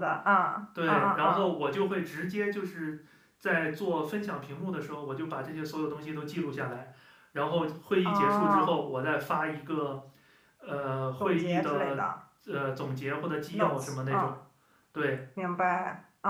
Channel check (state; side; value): identical; both; correlation 1.00